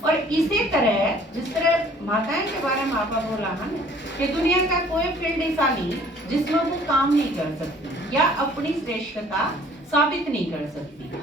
और इसी तरह जिस तरह माताएं के बारे में आपा बोला है ना कि दुनिया का कोई फील्ड ऐसा नहीं जिसमें वो काम नहीं कर सकती या अपनी श्रेष्ठता साबित नहीं कर सकती,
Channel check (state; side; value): normal; both; correlation 0.55